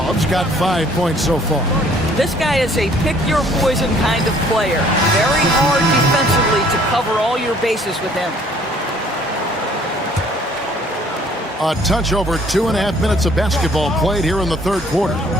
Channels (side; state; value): both; normal; correlation 0.58